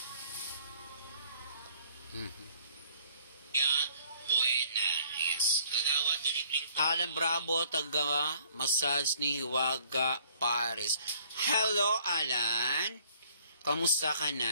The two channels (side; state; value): both; inverted; correlation -0.59